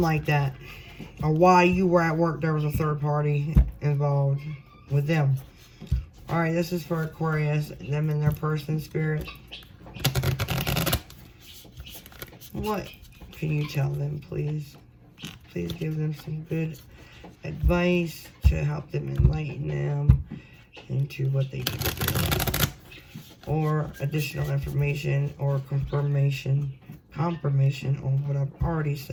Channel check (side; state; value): both; identical; correlation 1.00